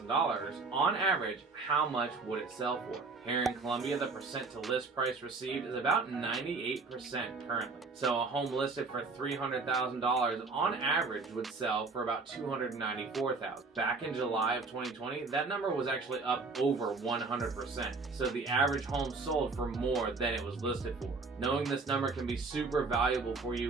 on average, how much would it sell for? Here in Columbia, the percent to list price received is about 98% currently. So a home listed for $300,000 on average would sell for about $294,000. Back in July of 2020, that number was actually up over 100%. So the average home sold for more than it was listed for. Knowing this number can be super valuable for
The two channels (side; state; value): left; quieter; 4.1 dB